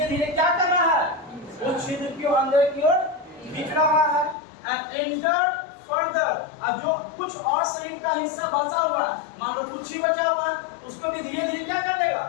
धीरे क्या कर रहा है, उस छिद्र के अंदर की ओर खींच रहा है। एंड एंटर फर्दर, अब जो कुछ और शरीर का हिस्सा बचा हुआ है, मान लो कुछ ही बचा हुआ है, उसको भी धीरे धीरे क्या कर देगा,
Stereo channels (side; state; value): right; drops out; at 4.4 s